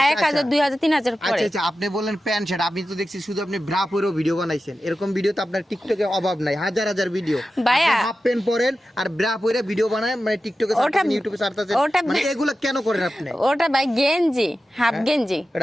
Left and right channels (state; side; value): normal; both; correlation 0.93